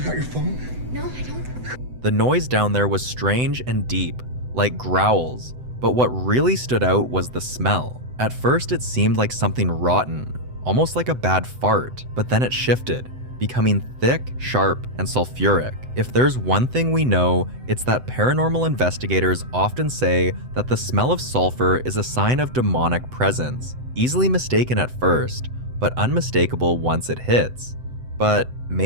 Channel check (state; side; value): late; left; 7.9 ms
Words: got your phone? No, I don't. The noise down there was strange and deep, like growls, but what really stood out was the smell. At first it seemed like something rotten, almost like a bad fart, but then it shifted, becoming thick, sharp, and sulfuric. If there's one thing we know, it's that paranormal investigators often say that the smell of sulfur is a sign of demonic presence, easily mistaken at first, but unmistakable once it hits. But